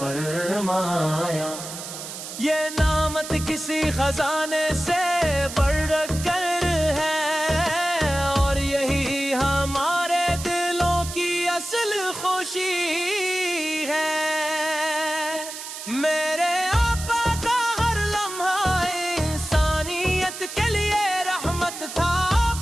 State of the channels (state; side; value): noise; right; hiss, 9 dB below the sound